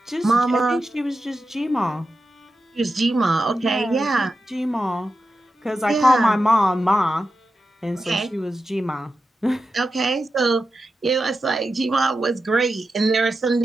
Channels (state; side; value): normal; both; correlation 0.90